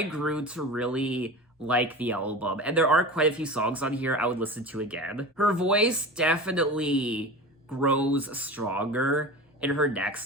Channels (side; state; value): both; normal; correlation 0.32